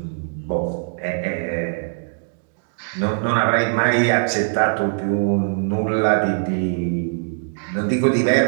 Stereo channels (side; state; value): left; silent; 63 dB below the other